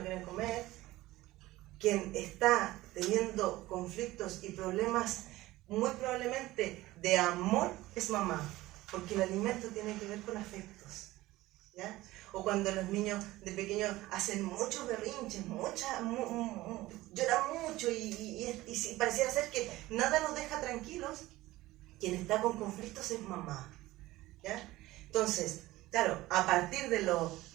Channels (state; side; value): quieter; left; 17.7 dB